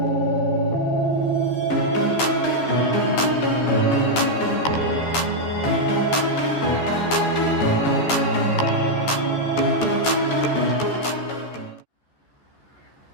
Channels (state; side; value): late; right; 14 ms